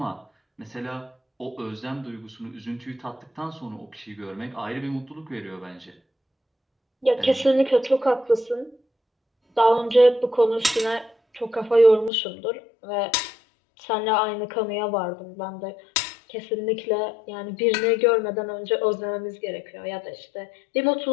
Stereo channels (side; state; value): right; drops out; at 12.1 s